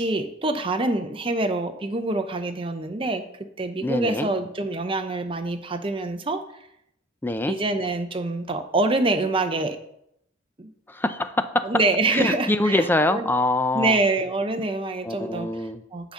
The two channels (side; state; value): both; normal; correlation 0.46